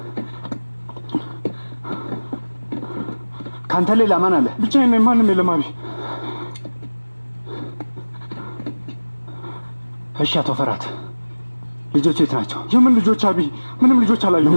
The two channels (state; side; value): inverted; both; correlation -1.00